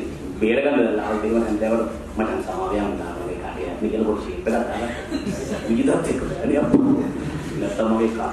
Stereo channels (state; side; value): identical; both; correlation 1.00